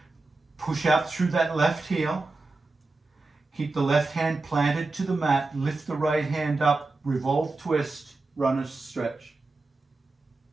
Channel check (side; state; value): left; quieter; 3.4 dB